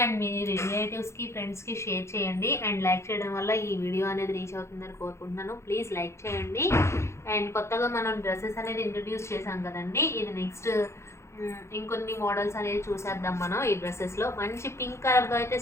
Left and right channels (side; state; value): right; late; 0.13 ms